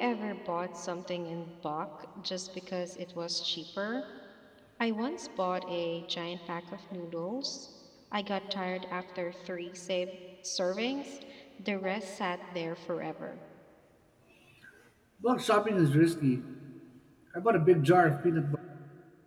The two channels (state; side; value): identical; both; correlation 1.00